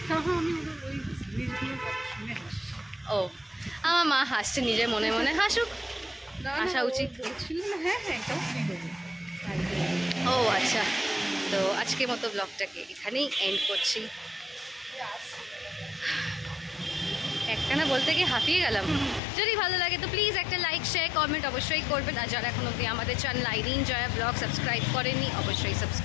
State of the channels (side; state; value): right; drops out; at 19.2 s